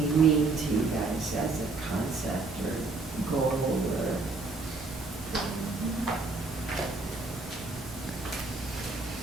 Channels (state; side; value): quieter; left; 3.6 dB